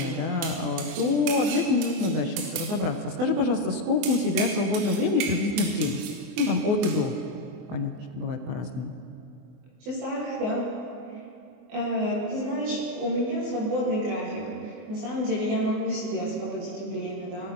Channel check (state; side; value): late; left; 24 ms